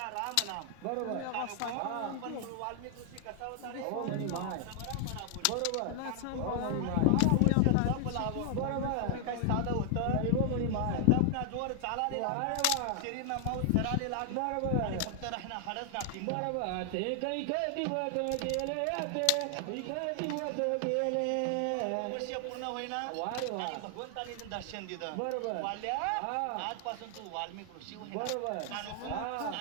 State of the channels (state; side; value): different; both; correlation 0.00